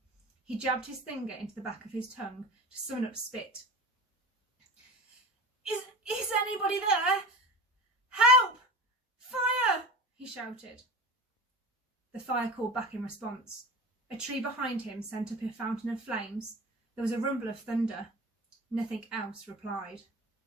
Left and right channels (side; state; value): both; normal; correlation 0.32